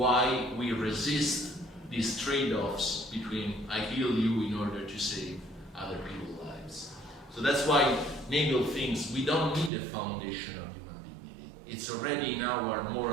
we resist these trade-offs between I kill you in order to save other people's lives. So that's why Nagel thinks we don't need a foundation of human dignity. It's already in our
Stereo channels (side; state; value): left; drops out; at 9.7 s